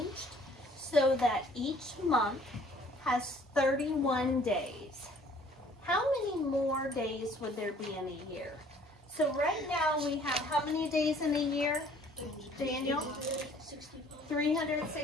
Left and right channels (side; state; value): both; normal; correlation 0.56